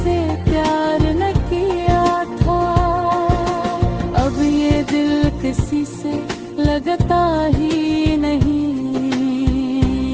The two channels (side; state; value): both; identical; correlation 1.00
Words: प्यार न किया था। अब ये दिल किसी से लगता ही नहीं,